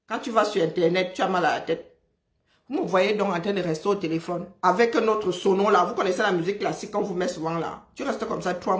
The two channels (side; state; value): both; identical; correlation 1.00